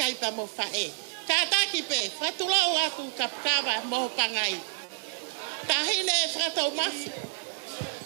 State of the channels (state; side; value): silent; left; digital silence